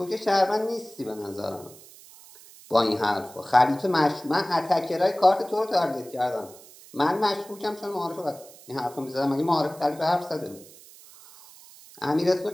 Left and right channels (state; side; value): noise; right; hiss, 21 dB below the sound